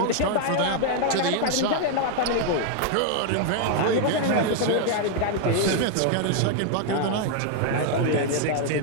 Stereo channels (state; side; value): different; both; correlation 0.00